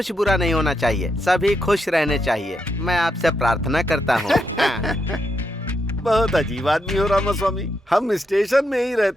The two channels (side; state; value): both; normal; correlation 0.81